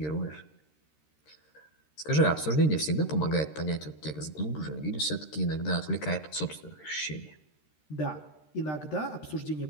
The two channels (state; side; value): late; right; 13 ms